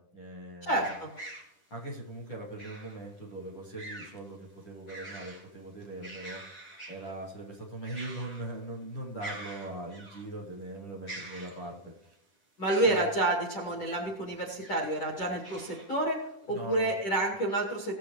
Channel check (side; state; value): right; late; 10 ms